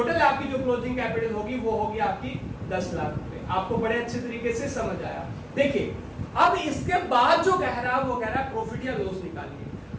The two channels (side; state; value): both; identical; correlation 1.00